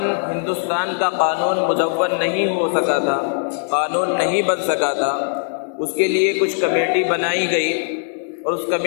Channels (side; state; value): right; silent; 66 dB below the other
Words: ہندوستان کا قانون مدون نہیں ہو سکا تھا، قانون نہیں بن سکا تھا۔ اس کے لیے کچھ کمیٹی بنائی گئی اور اس